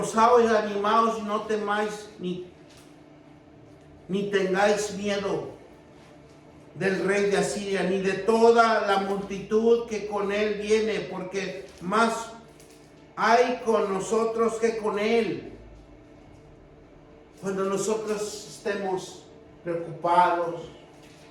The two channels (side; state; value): both; identical; correlation 1.00